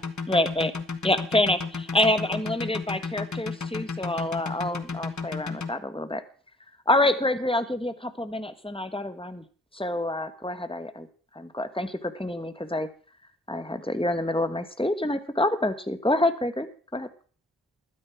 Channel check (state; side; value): normal; both; correlation 0.58